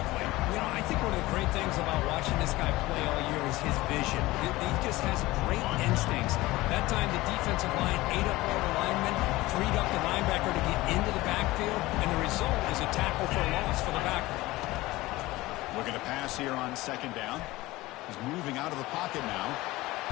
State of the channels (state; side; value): quieter; right; 19.0 dB